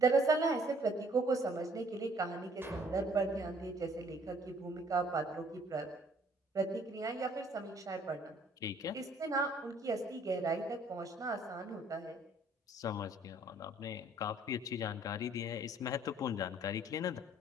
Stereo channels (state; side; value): normal; both; correlation 0.60